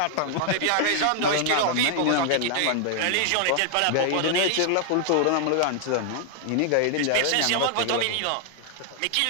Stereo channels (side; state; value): both; different; correlation 0.00